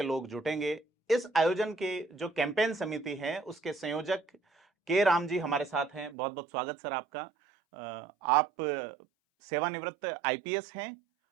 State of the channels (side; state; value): left; drops out; at 6.2 s